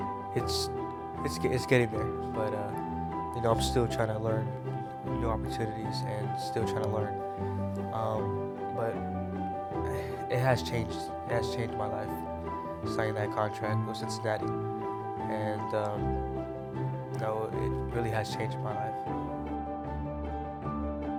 It's getting there, but I'm still trying to learn new opportunities and still trying to learn. But it has changed. It has changed my life. Signing that contract with Cincinnati, and it really has changed my life.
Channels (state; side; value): identical; both; correlation 1.00